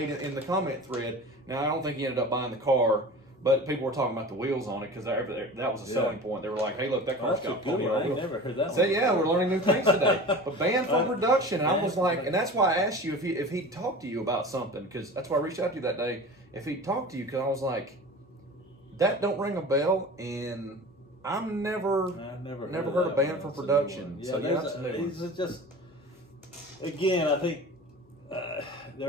in the comment thread. Now I don't think he ended up buying the car, but people were talking about the wheels on it because that was a selling point. They were like, "Hey, look, that car's got pony I wheels." never heard that. So yeah, we're learning new things today. But banned from production, and I was like, and that's why I asked you if he'd talked to you about something, because that's why I reached out to you that day. If he'd talked to you, because I was like, that don't ring a bell, and I've never heard of banned from production. Yeah, so that's a new one. It's just, again, I think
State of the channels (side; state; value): both; normal; correlation 0.36